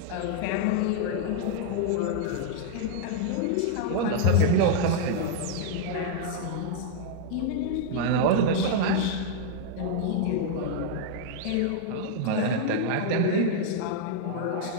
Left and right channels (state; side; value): different; both; correlation -0.01